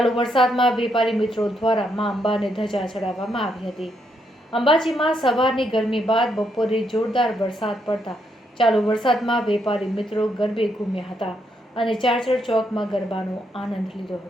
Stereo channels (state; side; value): normal; both; correlation 0.77